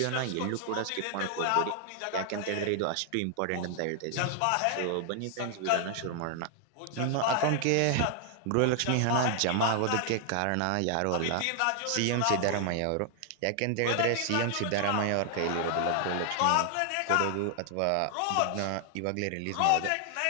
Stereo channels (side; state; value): both; different; correlation 0.00